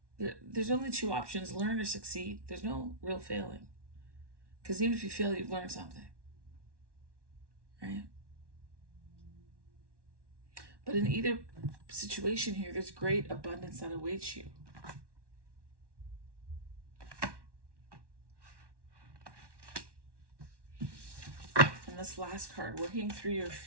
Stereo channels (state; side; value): late; left; 1.1 ms